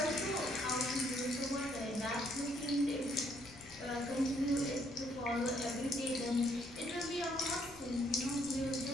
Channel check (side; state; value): left; noise; rumble, 22 dB below the sound